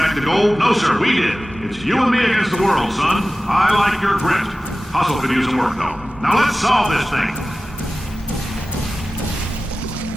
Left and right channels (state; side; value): normal; both; correlation 0.96